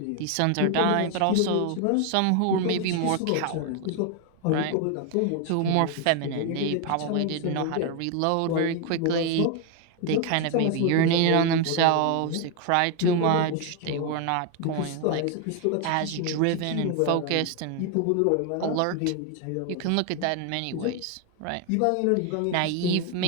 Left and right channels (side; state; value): both; different; correlation 0.01